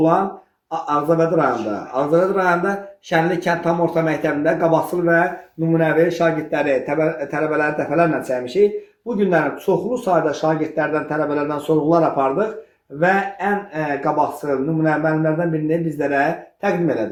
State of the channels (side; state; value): both; identical; correlation 1.00